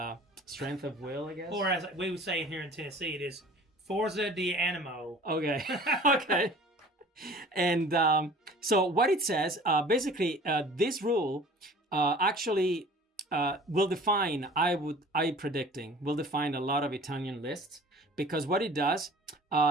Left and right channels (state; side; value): normal; both; correlation 0.46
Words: strength of will, I guess. Or as we would say here in Tennessee, it is Forza di Animo. Okay. Okay. And so what it says, basically, this rule actually will define, will define a lot of Italian lists, because what it does,